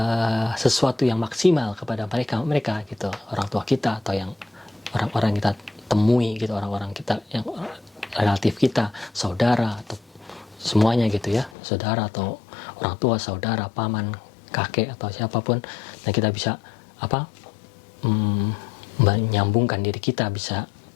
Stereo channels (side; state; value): right; drops out; at 11.6 s